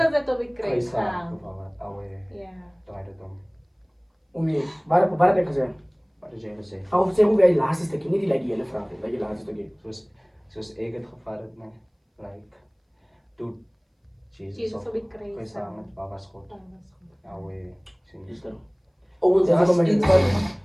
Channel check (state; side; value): identical; both; correlation 1.00